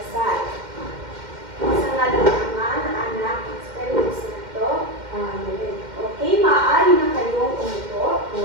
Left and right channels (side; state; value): left; late; 2.1 ms